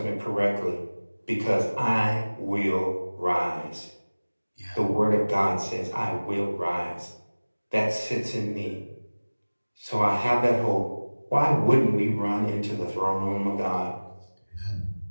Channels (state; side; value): inverted; both; correlation -1.00